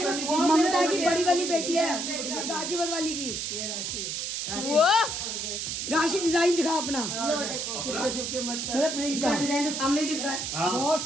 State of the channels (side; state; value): right; noise; hiss, 3 dB below the sound